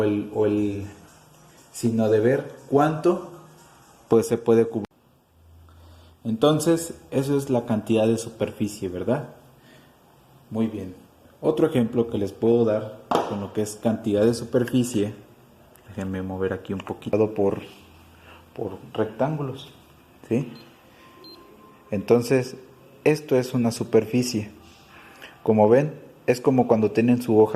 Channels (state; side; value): identical; both; correlation 1.00